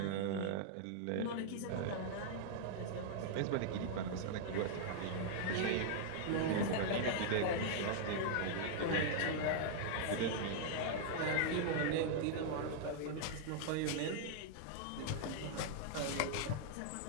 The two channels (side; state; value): both; different; correlation -0.01